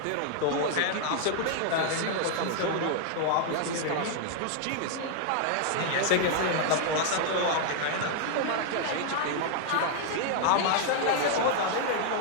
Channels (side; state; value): both; different; correlation 0.00